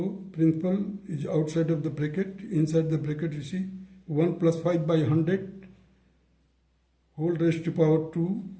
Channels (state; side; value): identical; both; correlation 1.00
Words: principal is outside of the bracket. Inside the bracket you see 1 + 5 by 100 whole raised to power 2